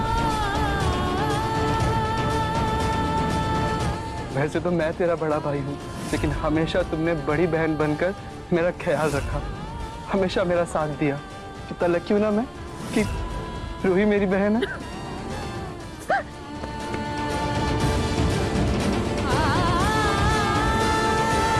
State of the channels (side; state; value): both; identical; correlation 1.00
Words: वैसे तो मैं तेरा बड़ा भाई हूँ, लेकिन हमेशा तुमने बड़ी बहन बनकर मेरा ख्याल रखा, हमेशा मेरा साथ दिया। कितना लकी हूँ ना मैं कि रूही मेरी बहन है।